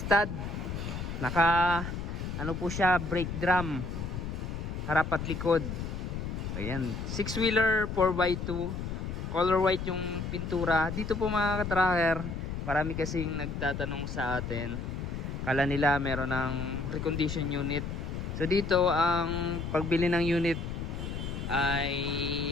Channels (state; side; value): noise; left; rumble, 5 dB below the sound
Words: Naka po siya, brake drum, harap at likod. Ayan, 6-wheeler 4x2, color white yung pintura. Dito po mga ka-tracker, marami kasing nagtatanong sa atin, kala nila meron ng recondition unit. So dito ang pagbili ng unit ay